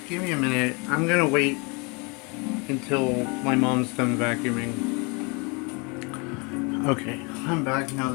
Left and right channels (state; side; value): quieter; right; 30.7 dB